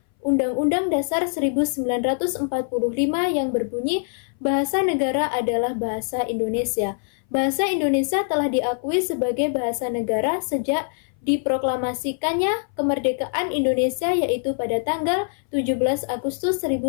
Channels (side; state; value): right; silent; 59 dB below the other